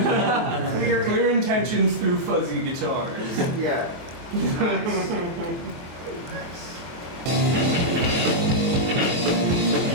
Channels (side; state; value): left; late; 23 ms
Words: clear, Clear intentions through fuzzy guitars. Yeah. Nice. Nice.